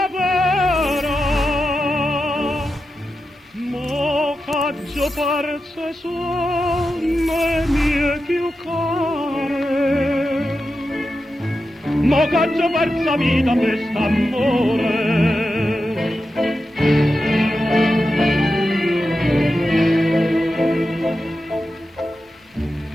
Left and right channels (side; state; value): both; normal; correlation 0.90